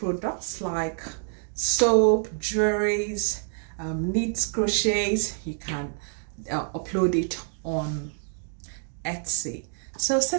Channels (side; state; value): left; silent; 60 dB below the other